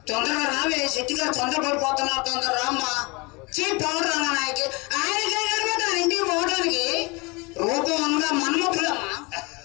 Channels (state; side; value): quieter; right; 27.0 dB